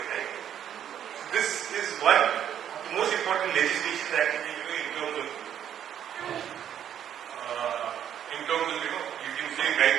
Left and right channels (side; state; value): left; quieter; 9.8 dB